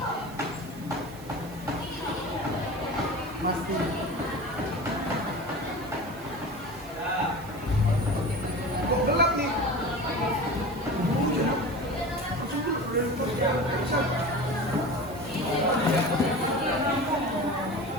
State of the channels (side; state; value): right; noise; hiss, 21 dB below the sound